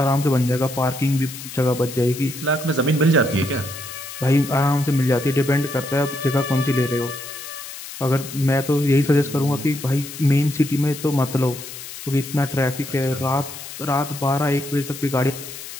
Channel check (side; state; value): left; noise; hiss, 12 dB below the sound